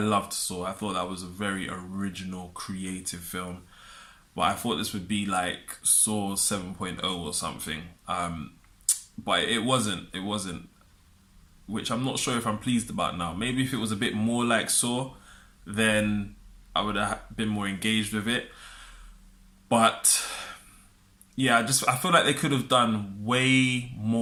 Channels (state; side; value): identical; both; correlation 1.00